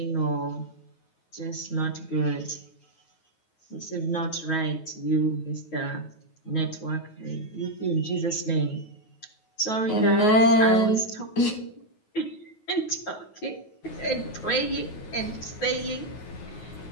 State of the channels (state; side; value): late; right; 9.3 ms